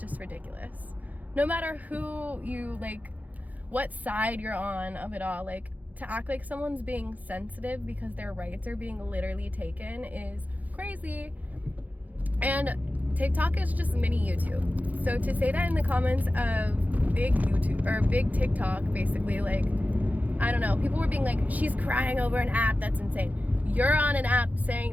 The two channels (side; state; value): left; late; 0.078 ms